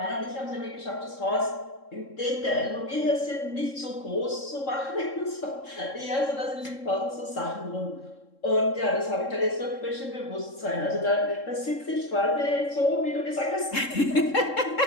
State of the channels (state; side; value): late; right; 3.7 ms